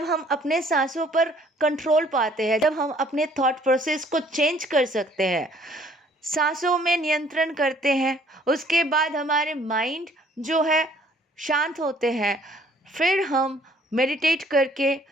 हम अपने सांसों पर कंट्रोल पाते हैं, जब हम अपने थॉट प्रोसेस को चेंज कर सकते हैं, सांसों में नियंत्रण करते हैं, उसके बाद हमारे माइंड जो है शांत होते हैं, फिर हम मेडिटेट करके,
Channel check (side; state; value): both; normal; correlation 0.59